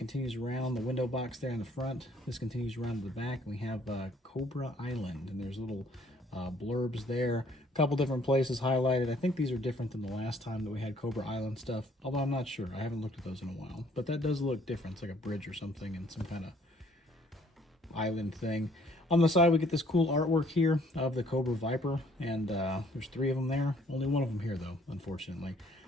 around the window box there in the front. This continues around to the back. We have Cobra Island, and there's little blurbs there. A couple different places highlighted. I think these are different than the last time that we had Cobra Island stuff, although I'm not sure. I haven't looked at those in a while. But that does look different. It's like a bridge or something and some kind of island thing. On the side, we get this cool artwork here of the Cobra Viper, and there's 3 of them there. Only one of them here, though, unfortunately.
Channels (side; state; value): both; normal; correlation 0.62